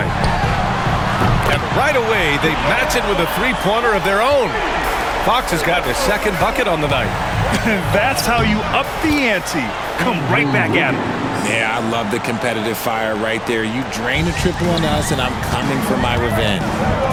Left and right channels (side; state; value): both; identical; correlation 1.00